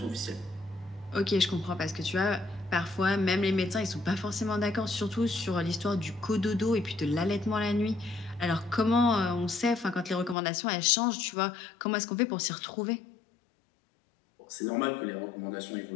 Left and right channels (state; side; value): drops out; right; at 10.4 s